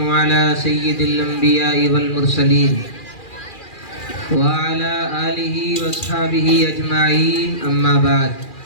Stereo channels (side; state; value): right; late; 2.4 ms